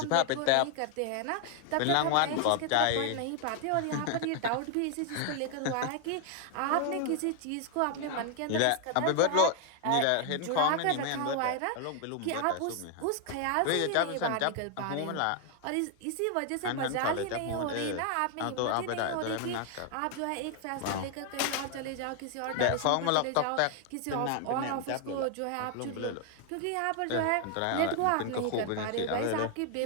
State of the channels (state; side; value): different; both; correlation 0.00